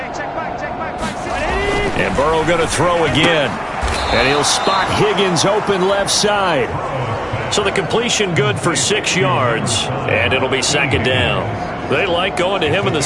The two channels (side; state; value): both; identical; correlation 1.00